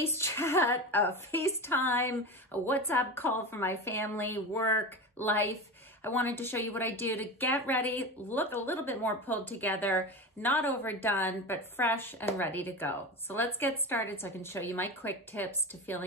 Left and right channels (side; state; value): both; normal; correlation 0.25